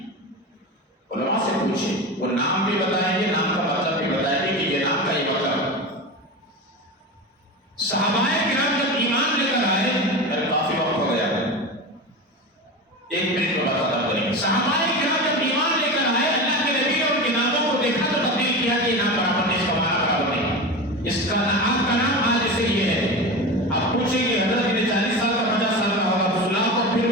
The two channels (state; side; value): normal; both; correlation 0.26